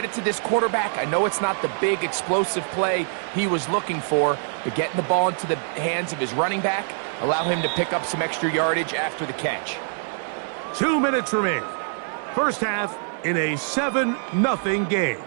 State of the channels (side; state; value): left; silent; 62 dB below the other